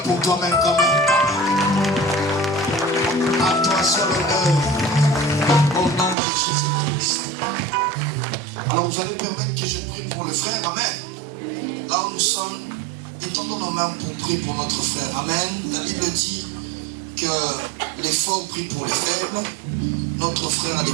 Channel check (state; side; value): drops out; left; at 6.2 s